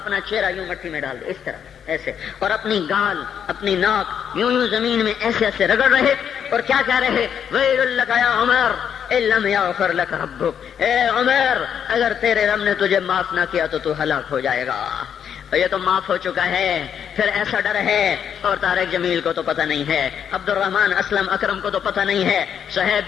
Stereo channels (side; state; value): right; quieter; 8.3 dB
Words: چہرہ یوں مٹی میں ڈال دے، اس طرح ایسے، اور اپنی گال اپنی ناک یوں زمین میں ایسے ایسے رگڑ رہے، اور کیا کہہ رہے؟ ویل لک یا عمر ان لم یغفر لک ربک، اے عمر اگر تیرے رب نے تجھے معاف نہ کیا تو ہلاک ہو جائے گا۔ یہ تو معاف ہو چکا ہے، پھر ایسا ڈر ہے۔ اور طارق جمیل کو تو پتہ نہیں ہے، عبد الرحمن اسلم اکرم کو تو پتہ نہیں ہے،